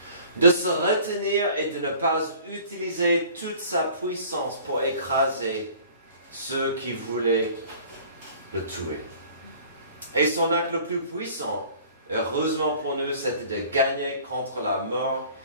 De se retenir et de ne pas utiliser toute sa puissance pour écraser ceux qui voulaient le tuer. Et son acte le plus puissant, heureusement pour nous, c'était de gagner contre la mort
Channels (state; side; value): inverted; both; correlation -0.49